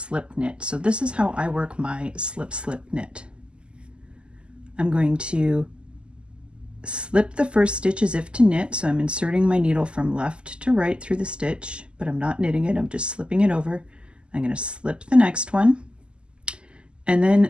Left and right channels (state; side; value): late; left; 0.051 ms